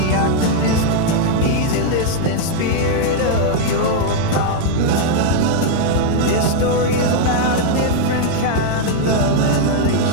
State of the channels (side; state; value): both; different; correlation -0.01